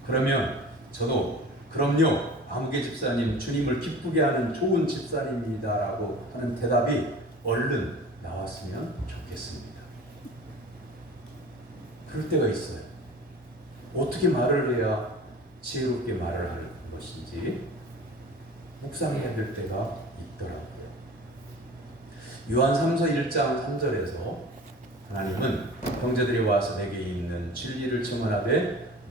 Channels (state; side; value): normal; both; correlation 0.40